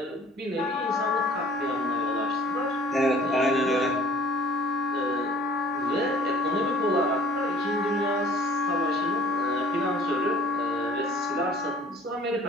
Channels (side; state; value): both; normal; correlation 0.52